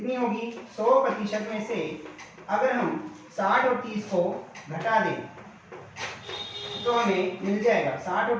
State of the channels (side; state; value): both; identical; correlation 1.00